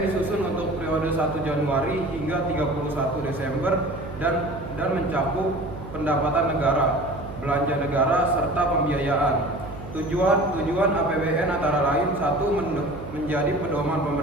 disusun untuk periode 1 Januari hingga 31 Desember dan mencakup pendapatan negara, belanja negara, serta pembiayaan. Tujuan APBN antara lain: 1. Menjadi pedoman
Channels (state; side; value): noise; right; hum, 12 dB below the sound